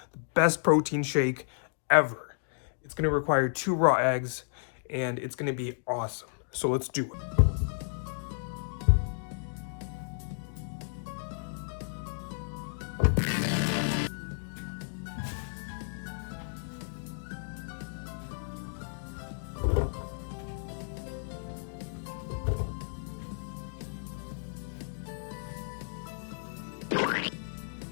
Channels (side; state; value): right; silent; digital silence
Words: the best protein shake ever. It's going to require 2 raw eggs, and it's going to be awesome. So let's do it.